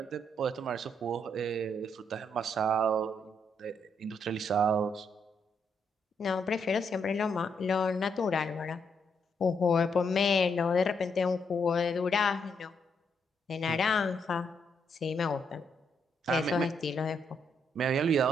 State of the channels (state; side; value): normal; both; correlation 0.76